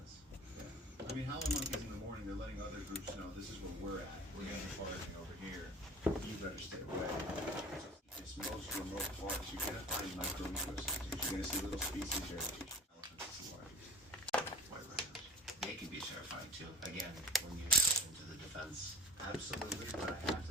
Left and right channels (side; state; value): both; normal; correlation 0.44